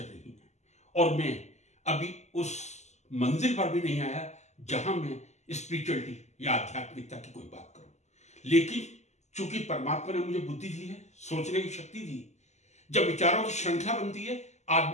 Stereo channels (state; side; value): late; right; 0.33 ms